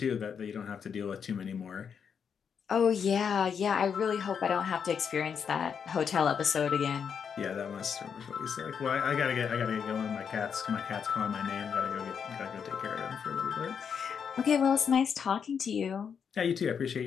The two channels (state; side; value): quieter; right; 7.0 dB